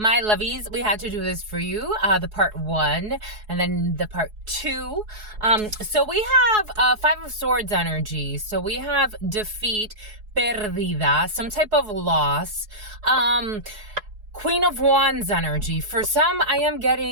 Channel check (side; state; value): left; late; 4.7 ms